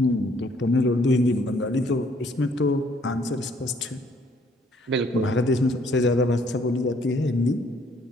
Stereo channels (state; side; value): normal; both; correlation 0.64